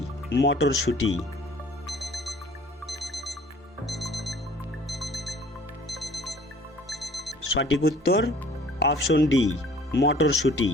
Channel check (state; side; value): normal; both; correlation 0.51